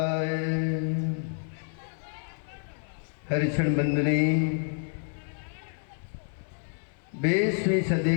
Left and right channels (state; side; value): silent; right; 59 dB below the other